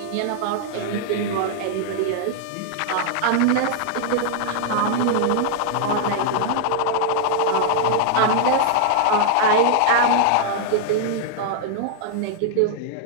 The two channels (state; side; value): different; both; correlation 0.00